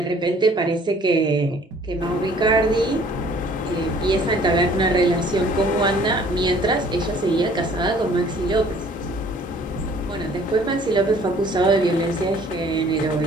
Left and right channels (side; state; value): both; normal; correlation 0.55